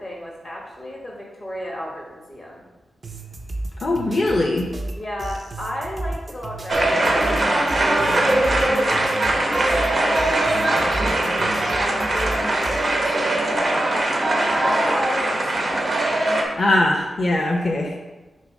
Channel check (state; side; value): normal; both; correlation 0.90